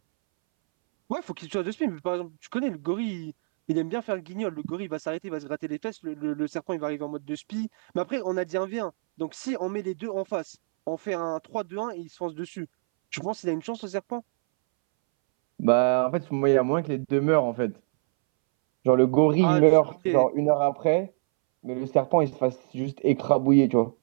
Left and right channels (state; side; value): silent; left; 61 dB below the other